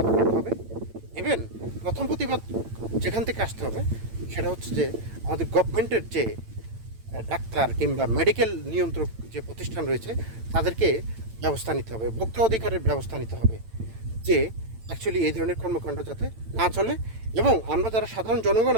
করতে হবে। ইভেন প্রথম প্রতিবাদ যেখান থেকে আসতে হবে, সেটা হচ্ছে যে আমাদের গভর্নমেন্টের যে ডাক্তার কিংবা মেডিকেল নিয়ন্ত্রক যে প্রতিষ্ঠান রয়েছে, তাদেরকে ব্যবস্থা নিতে হবে, ভোক্তা অধিকারের ব্যবস্থা নিতে হবে, যে অ্যাকচুয়ালি এই ধরনের কর্মকাণ্ড যাতে না চলে, এবং আমরা যারা সাধারণ জনগণ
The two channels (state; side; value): late; left; 8.9 ms